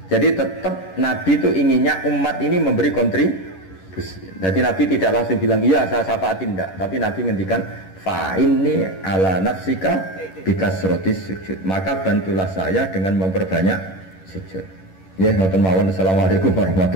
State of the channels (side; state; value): right; late; 11 ms